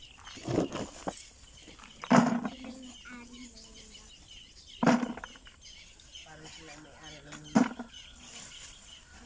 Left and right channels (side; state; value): both; identical; correlation 1.00